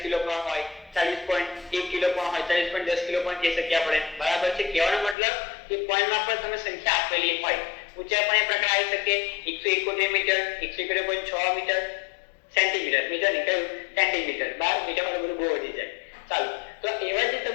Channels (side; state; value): right; drops out; at 5.2 s